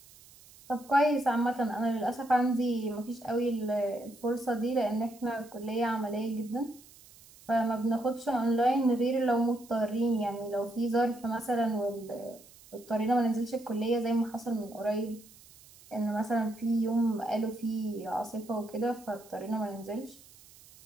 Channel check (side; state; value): right; noise; hiss, 23 dB below the sound